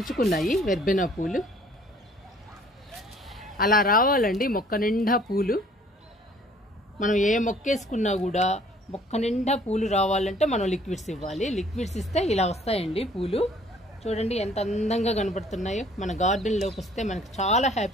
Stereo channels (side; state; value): both; normal; correlation 0.57